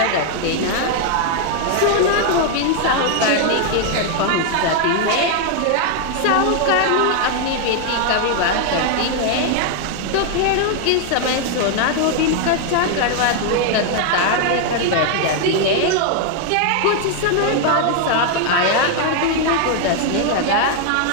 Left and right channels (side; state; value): both; different; correlation 0.00